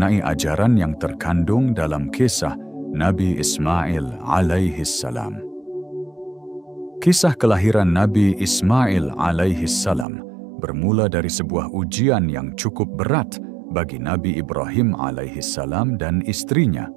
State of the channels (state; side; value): drops out; left; at 10.1 s